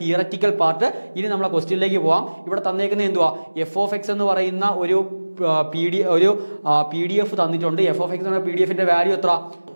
തിയററ്റിക്കൽ പാർട്ട്. ഇനി നമ്മളെ ക്വസ്റ്റ്യനിലേക്ക് പോകാം. ഇവിടെ തന്നേക്കുന്നത് എന്തുവാ, എഫ് ഓഫ് എക്സ് എന്ന് പറയുന്ന ഒരു പി ഡി എഫ് തന്നിട്ടുണ്ട്. എഫ് ഓഫ് എക്സ് എന്ന പി ഡി എഫിന്റെ വാല്യൂ എത്ര,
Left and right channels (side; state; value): both; inverted; correlation -1.00